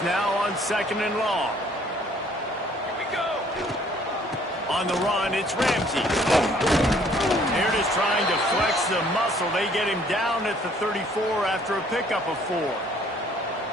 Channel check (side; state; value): both; normal; correlation 0.60